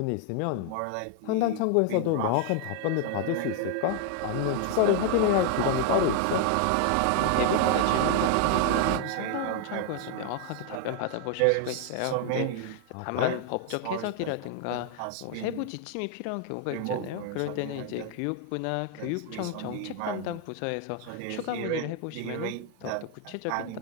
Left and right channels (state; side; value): different; both; correlation 0.00